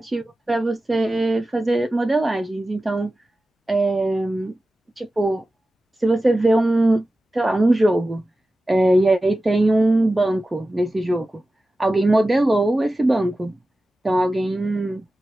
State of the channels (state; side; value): normal; both; correlation 0.94